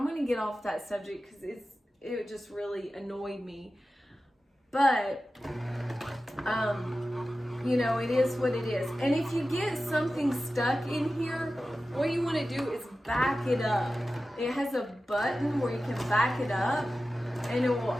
going to get off that subject because it just really annoyed me. But you know, it is what it is. And if you get something stuck in here, what you want to do is back it up. It has a button where you can back it up, and it will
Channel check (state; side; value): normal; both; correlation 0.94